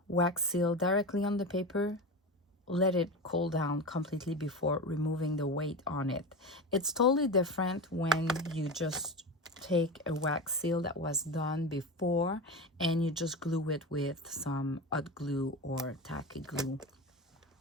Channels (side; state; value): both; normal; correlation 0.24